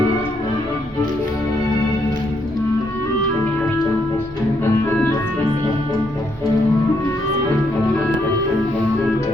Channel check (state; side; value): normal; both; correlation 0.75